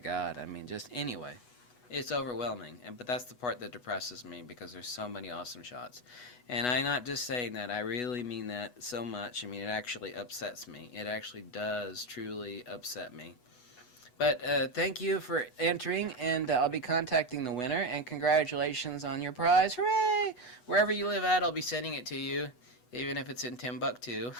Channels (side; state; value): right; late; 8.1 ms